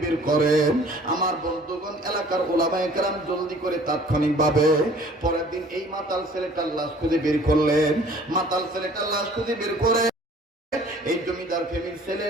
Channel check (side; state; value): both; normal; correlation 0.52